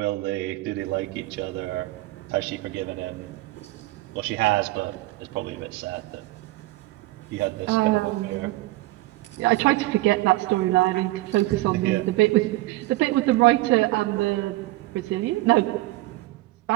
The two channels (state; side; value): quieter; left; 18.8 dB